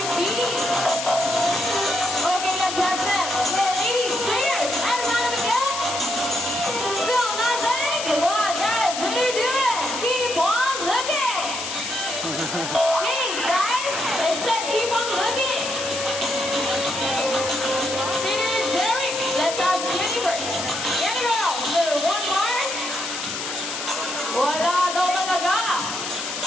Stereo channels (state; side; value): noise; left; hiss, 5 dB below the sound